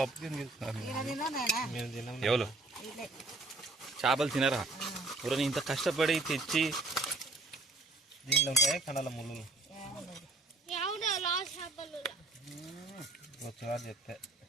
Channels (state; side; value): quieter; left; 3.1 dB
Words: తీసుకున్నారు ఎవరు చేపలు తినరా ఎవరైనా ఇంత కష్టపడి తెచ్చి దీనిలో ఉంటాయి కండల ముళ్ళు వచ్చేవాడు చెప్తే